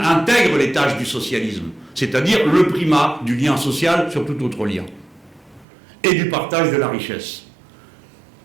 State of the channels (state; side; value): drops out; left; at 5.7 s